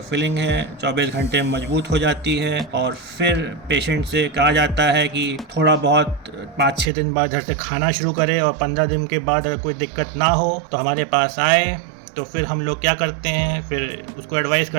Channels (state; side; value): drops out; left; at 6.9 s